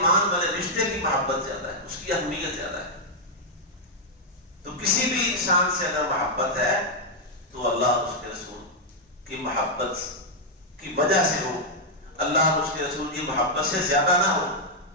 والے رشتے کی محبت زیادہ ہے، اس کی اہمیت زیادہ ہے۔ تو کسی بھی انسان سے اگر محبت ہے تو اللہ اور اس کے رسول کی محبت کی وجہ سے ہو، اللہ اور اس کے رسول کی محبت سے زیادہ نہ ہو،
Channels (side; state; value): both; normal; correlation -0.03